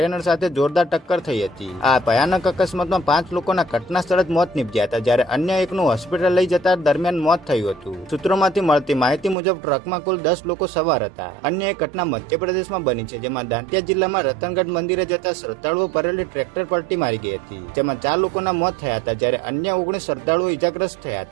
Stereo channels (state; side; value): drops out; left; at 9.3 s